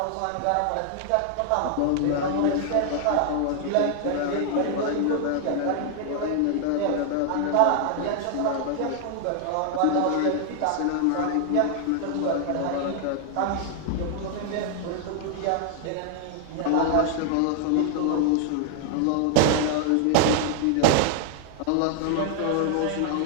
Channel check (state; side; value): different; both; correlation 0.00